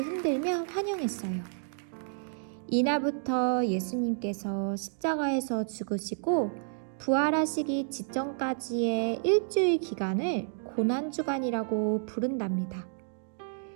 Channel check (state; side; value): silent; left; digital silence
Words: 흔들며 환영했어요. 이날부터 예수님께서 십자가에서 죽으시고 부활하시기 직전까지의 일주일 기간을 고난주간이라고 부른답니다.